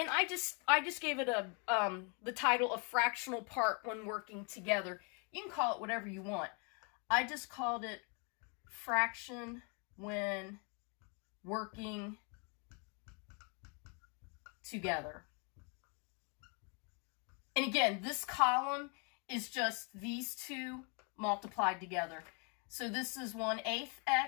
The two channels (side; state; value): right; quieter; 35.4 dB